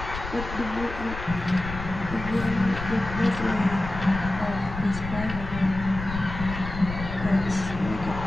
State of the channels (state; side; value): noise; left; rumble, 8 dB below the sound